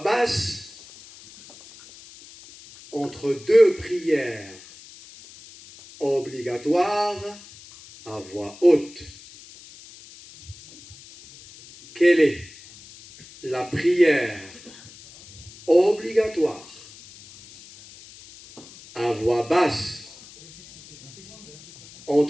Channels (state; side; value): noise; left; hiss, 20 dB below the sound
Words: entre deux prières obligatoires à voix haute? Quelle est la prière obligatoire à voix basse